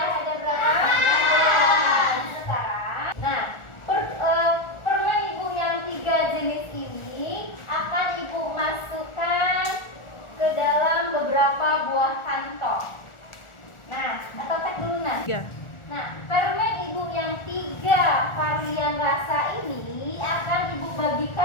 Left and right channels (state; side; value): late; right; 1.4 ms